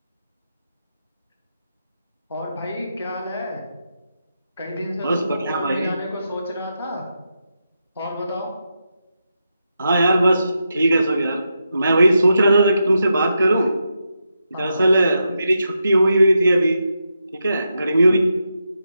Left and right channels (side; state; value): both; inverted; correlation -0.86